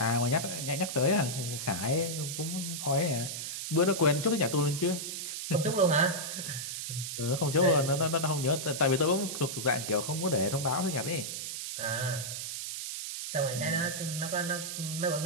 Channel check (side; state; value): right; noise; hiss, 5 dB below the sound